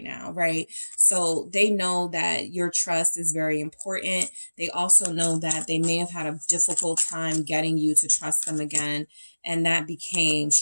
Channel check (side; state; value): both; inverted; correlation -1.00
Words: now, right? So they know that your trust is very important. They also know that they may have had a difficult time getting you to trust them again, and that became